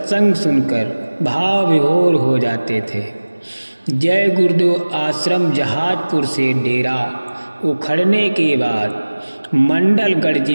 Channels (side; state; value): both; inverted; correlation -1.00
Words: सुनकर भाव विभोर हो जाते थे। जय गुरुदेव आश्रम जहाजपुर से डेरा उखड़ने के बाद मंडलगढ़